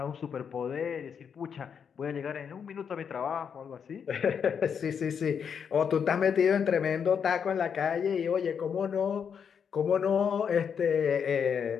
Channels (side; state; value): right; quieter; 7.1 dB